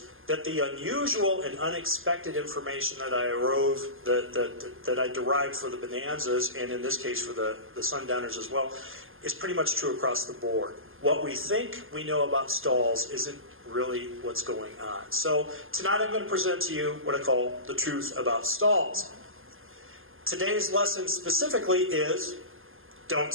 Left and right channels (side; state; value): left; late; 0.59 ms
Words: that the unusual and unexpected information that I derived for the Bonanzas, and in this case for the Sundowners as well, is pretty much true across the board. What we think we know about stalls isn't really what's going on. So tonight I'm going to present to you what I call the truth about stalls. Today's lesson specifically is don't